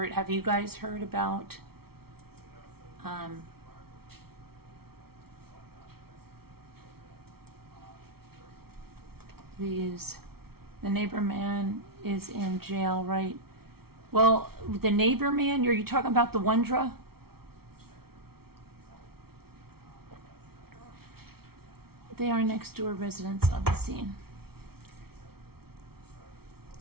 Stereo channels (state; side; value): late; left; 0.95 ms